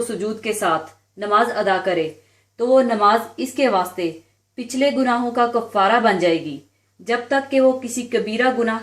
सुजूद के साथ नमाज अदा करे, तो वो नमाज इसके वास्ते पिछले गुनाहों का कफ़ारा बन जाएगी जब तक कि वो किसी कबीरा गुनाह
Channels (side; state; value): both; identical; correlation 1.00